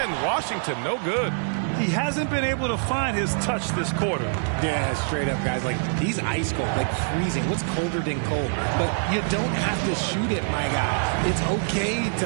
Washington, no good. He hasn't been able to find his touch this quarter. Yeah, straight up, guys. Like, he's ice cold, like freezing. What's colder than cold? But you don't have to shoot it, my guy. It's okay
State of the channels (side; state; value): left; silent; digital silence